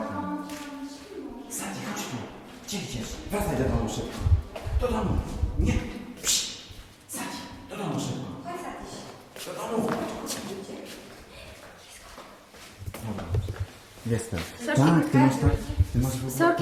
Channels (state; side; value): identical; both; correlation 1.00